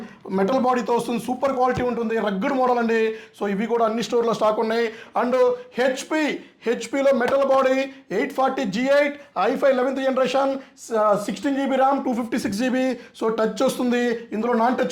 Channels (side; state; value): both; identical; correlation 1.00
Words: మెటల్ బాడీతో వస్తుంది, సూపర్ క్వాలిటీ ఉంటుంది, రగ్గడ్ మోడల్ అండి. సో ఇవి కూడా అన్ని స్టోర్లో స్టాక్ ఉన్నాయి. అండ్ హెచ్పీలో metal body 840 G8 i5 11th generation, 16 GB RAM 256 GB. So touch వస్తుంది, ఇందులో నాన్